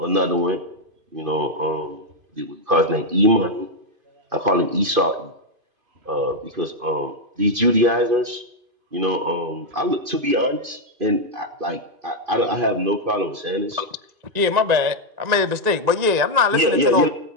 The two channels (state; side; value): late; left; 2.5 ms